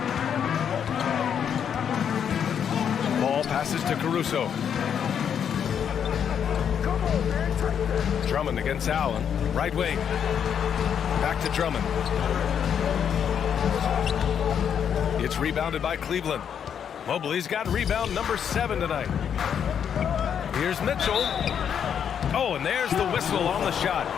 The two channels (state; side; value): quieter; right; 8.2 dB